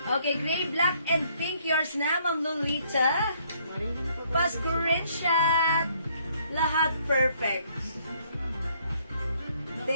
Okay, gray, black, and pink. Yours na, Ma'am Lolita. Pa-screenshot. Lahat perfect.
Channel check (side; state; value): both; inverted; correlation -0.67